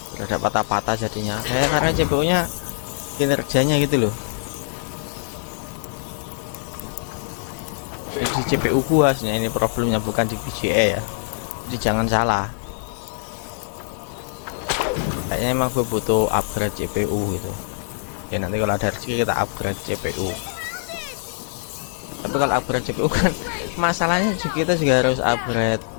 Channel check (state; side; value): silent; right; digital silence